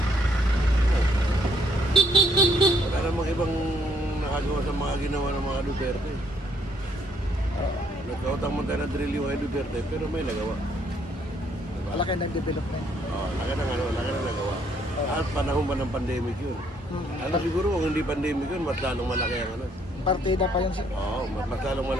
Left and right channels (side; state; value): both; normal; correlation 0.68